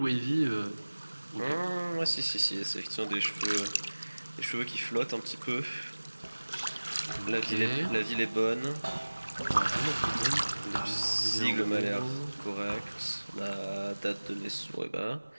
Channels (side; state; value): both; inverted; correlation -1.00